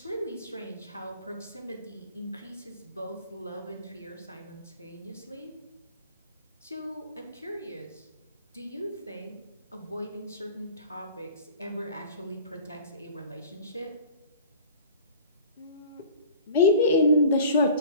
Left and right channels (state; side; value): inverted; both; correlation -0.44